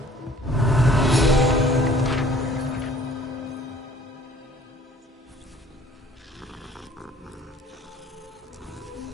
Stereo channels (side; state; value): both; normal; correlation 0.54